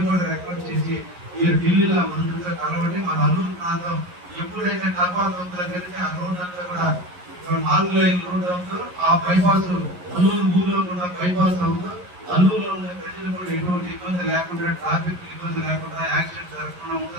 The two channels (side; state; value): left; late; 11 ms